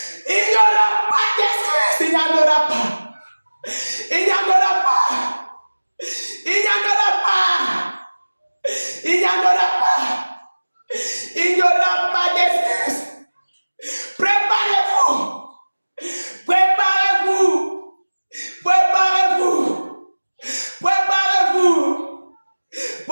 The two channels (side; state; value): both; inverted; correlation -1.00